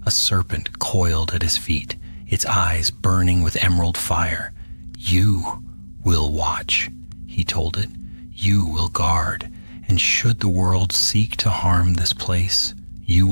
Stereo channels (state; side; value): inverted; both; correlation -1.00